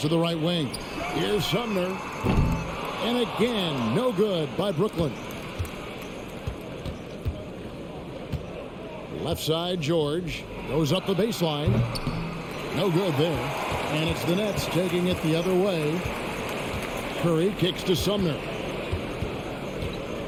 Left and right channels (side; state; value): both; identical; correlation 1.00